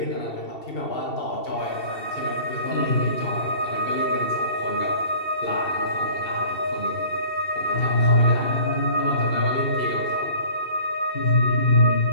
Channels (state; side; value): late; right; 2.7 ms